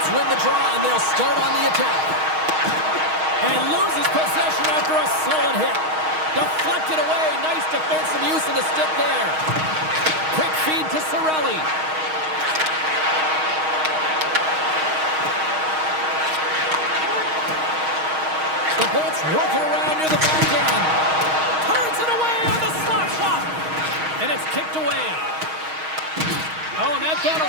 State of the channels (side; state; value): left; late; 6.4 ms